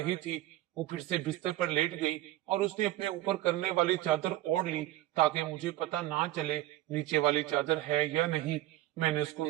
थी। वो फिर से बिस्तर पर लेट गई और उसने अपने ऊपर करने वाली चादर ओढ़ ली ताकि मुझे पता ना चले नीचे वाली चादर है या नहीं। मैंने उसको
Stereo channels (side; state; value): left; quieter; 15.6 dB